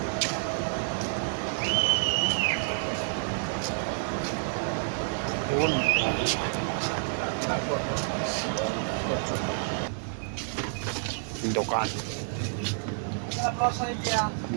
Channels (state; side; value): silent; left; 59 dB below the other